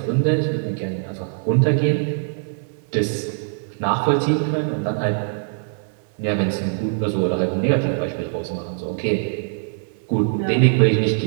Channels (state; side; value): silent; left; 56 dB below the other